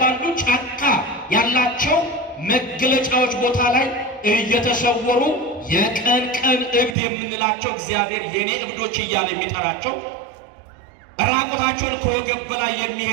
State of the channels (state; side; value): drops out; left; at 7.0 s